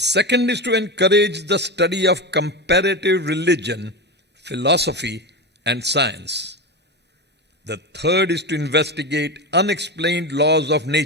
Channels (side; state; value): both; normal; correlation 0.19